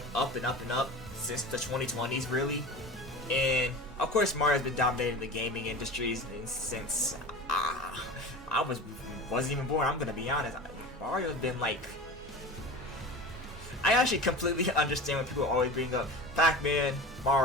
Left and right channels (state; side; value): normal; both; correlation 0.32